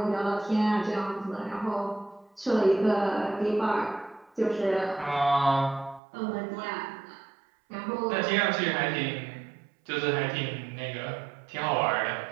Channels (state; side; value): drops out; left; at 6.0 s